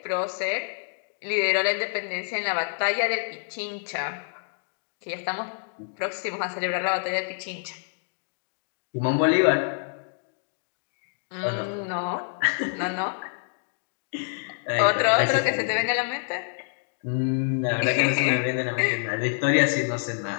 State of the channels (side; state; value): right; silent; digital silence